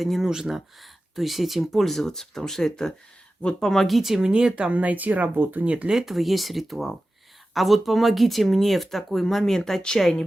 не нужно, то есть этим пользоваться, потому что это вот помогите мне там найти работу. Нет, для этого есть ритуал. А вот помогите мне в такой момент отчаяния,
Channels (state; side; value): normal; both; correlation 0.94